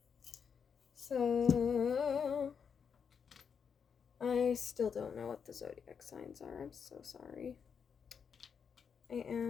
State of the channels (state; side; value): quieter; right; 6.7 dB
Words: So, I still don't know what the zodiac signs are. I'm so sorry. I